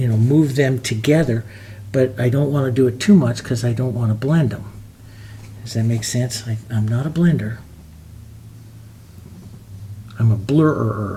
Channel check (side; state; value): both; identical; correlation 1.00